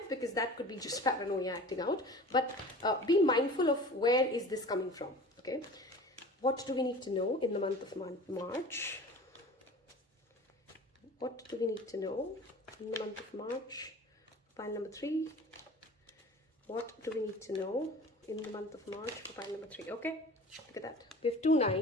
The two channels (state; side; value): normal; both; correlation 0.41